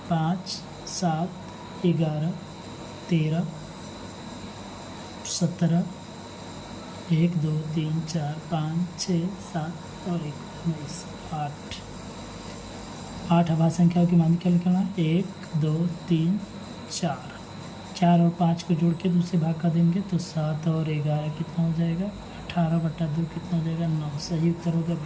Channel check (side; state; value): both; identical; correlation 1.00